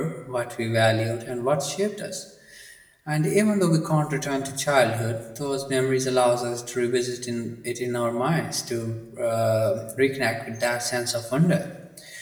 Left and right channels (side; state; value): both; identical; correlation 1.00